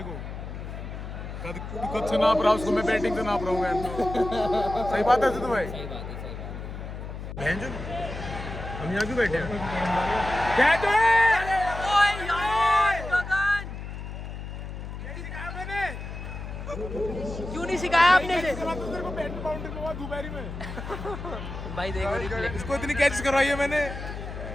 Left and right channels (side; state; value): left; noise; hum, 8 dB below the sound